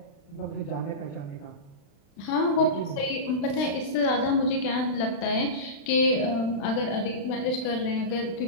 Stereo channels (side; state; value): right; late; 36 ms